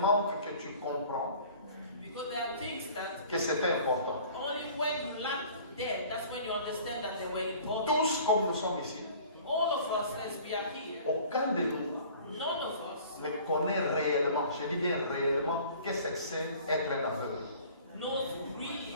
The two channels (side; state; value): both; inverted; correlation -0.48